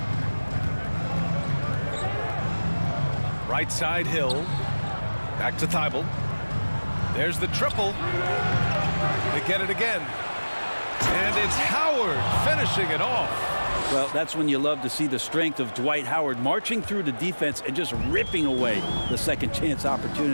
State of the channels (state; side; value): inverted; both; correlation -1.00